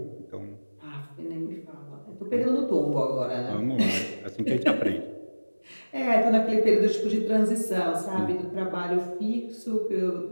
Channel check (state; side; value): inverted; both; correlation -1.00